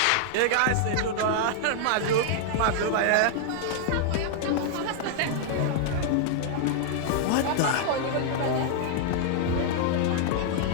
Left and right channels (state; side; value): different; both; correlation 0.00